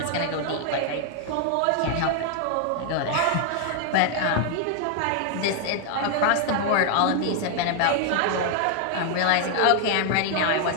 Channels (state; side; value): different; both; correlation 0.00